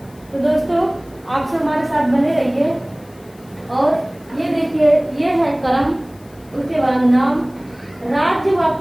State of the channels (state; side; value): noise; left; hiss, 28 dB below the sound